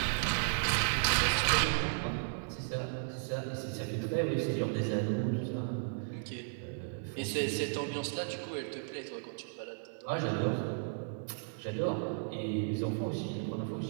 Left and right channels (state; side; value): silent; left; digital silence